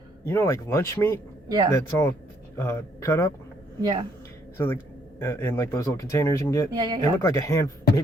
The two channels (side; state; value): both; normal; correlation 0.68